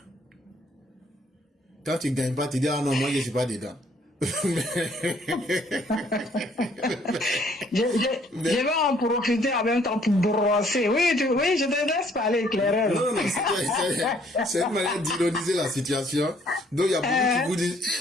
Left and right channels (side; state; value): both; normal; correlation 0.63